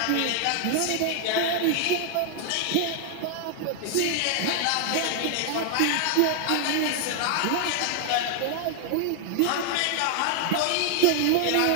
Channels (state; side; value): different; both; correlation 0.00